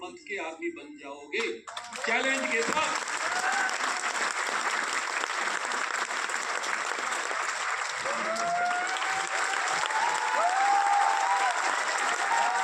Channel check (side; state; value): both; identical; correlation 1.00